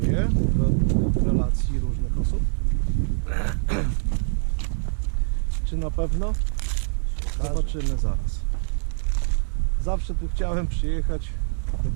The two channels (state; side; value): silent; left; 62 dB below the other